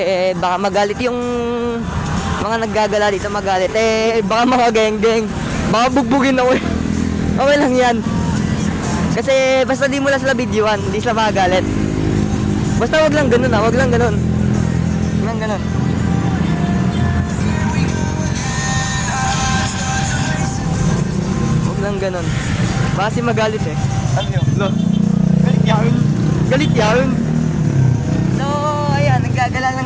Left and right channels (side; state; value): both; identical; correlation 1.00